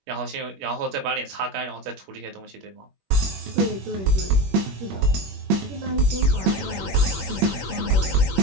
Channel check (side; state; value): left; late; 21 ms